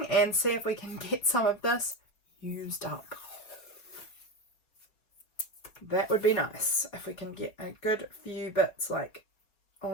and see if we can get some of this used up. That would be nice if we can get a good few bits like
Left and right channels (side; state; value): right; late; 4.6 ms